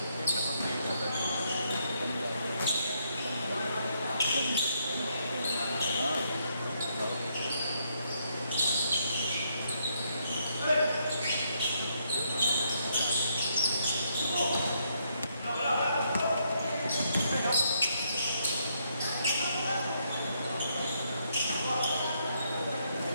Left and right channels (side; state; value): both; inverted; correlation -0.75